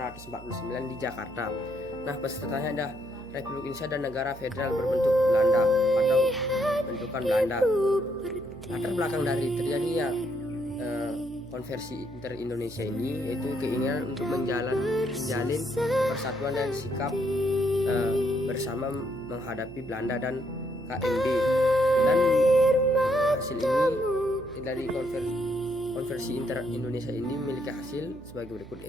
di Jakarta. Nah, pesertanya ada Republik Indonesia dan negara federal berbentuk Belanda atau bentukan Belanda. Latar belakang dari terjadinya konversi Inter-Indonesia ini yaitu keinginan untuk menjalin persatuan dan sikap bersama menghadapi Belanda dan KMB. Dan hasil ini dari konversi Inter-Indonesia ini memiliki hasil sebagai berikut,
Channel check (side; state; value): right; noise; hum, 18 dB below the sound